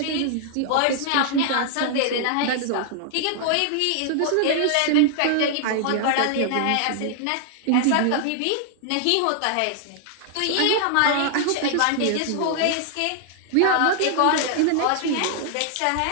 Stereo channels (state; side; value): different; both; correlation 0.00